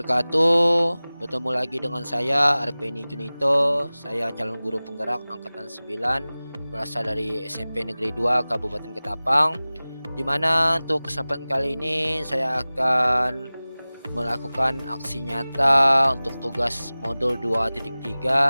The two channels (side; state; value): both; inverted; correlation -0.98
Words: Bertemu lagi dengan saya Arpeni Junito. Saya calon guru penggerak angkatan 9 berasal dari SMP Negeri 2 Kabupaten Ketapang. Di mana untuk kesempatan kali ini saya akan melakukan aksi nyata untuk tugas modul